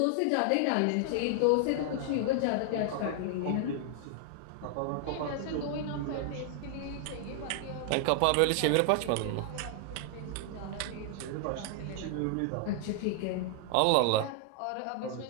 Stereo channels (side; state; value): both; different; correlation 0.00